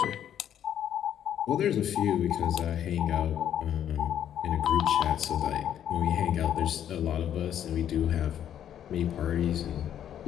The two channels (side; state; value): right; quieter; 10.1 dB